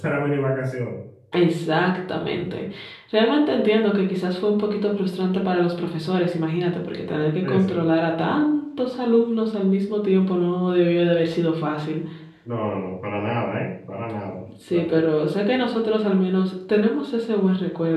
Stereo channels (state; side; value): identical; both; correlation 1.00